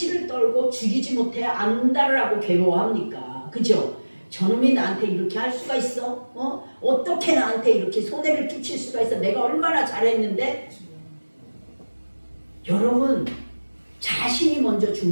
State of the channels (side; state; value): both; inverted; correlation -1.00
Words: 떨고 죽이지 못해 안달을 하고 괴로워합니까? 그죠? 저놈이 나한테 이렇게 할 수가 있어? 어떻게 나한테 이렇게 손해를 끼칠 수가 있어? 내가 얼마나 잘했는데? 여러분, 자신이 먼저